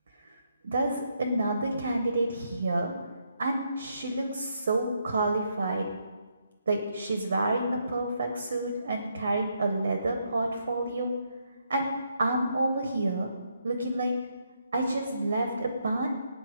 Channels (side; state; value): both; inverted; correlation -0.77